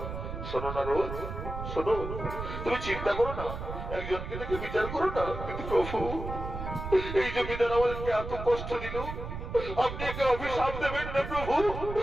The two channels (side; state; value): right; noise; rumble, 7 dB below the sound